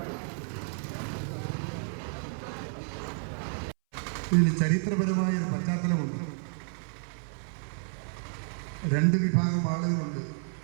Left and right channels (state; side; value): silent; left; 57 dB below the other